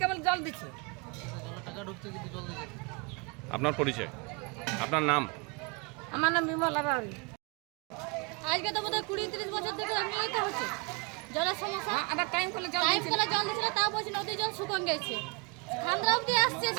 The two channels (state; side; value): quieter; left; 29.2 dB